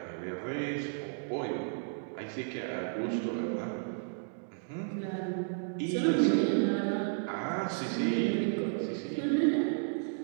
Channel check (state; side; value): silent; left; digital silence